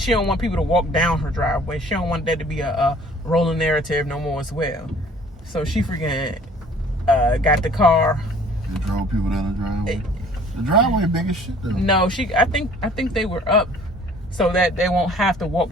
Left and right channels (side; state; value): both; normal; correlation 0.53